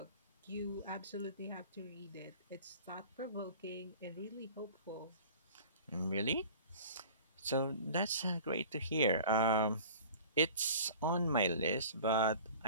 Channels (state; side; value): inverted; both; correlation -0.43